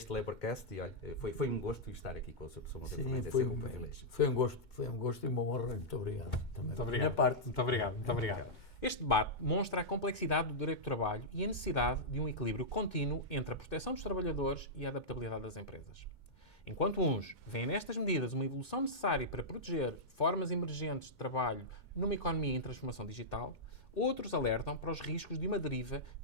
Laborcast, e olha, foi um gosto estar aqui com a sua pessoa uma vez mais. Foi um gosto e uma honra. Muito obrigado. Também. Muito obrigado. Da minha parte. Muito obrigado. Este debate mostra a complexidade do direito do trabalho e a necessidade de um equilíbrio contínuo entre a proteção dos trabalhadores e a adaptabilidade das empresas. Enquanto uns veem nestas medidas uma evolução necessária para proteger formas emergentes de trabalho numa economia em transformação digital, outros alertam para os riscos de uma deriva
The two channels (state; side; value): late; right; 2.2 ms